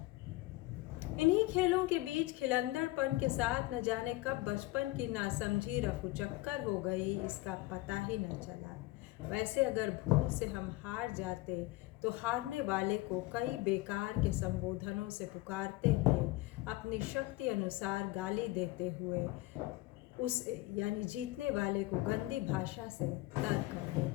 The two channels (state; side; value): quieter; right; 19.4 dB